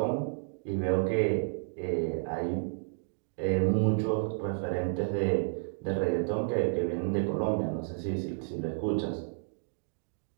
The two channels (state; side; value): silent; left; digital silence